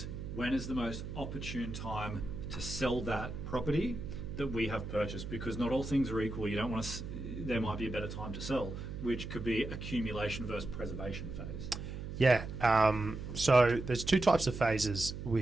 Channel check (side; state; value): right; noise; hum, 7 dB below the sound